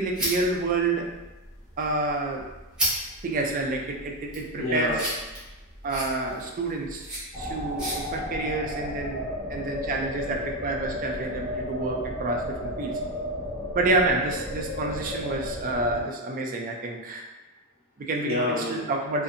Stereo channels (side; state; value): both; normal; correlation 0.09